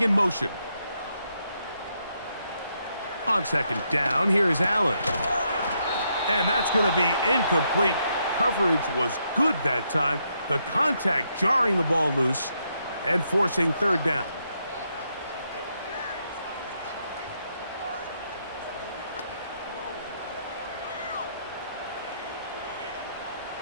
in motion. On 2nd down, here is Allen. And that's going to be incomplete. Coverage was good that time. The contact jarring the ball loose and forcing 3rd down.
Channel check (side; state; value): both; inverted; correlation -0.78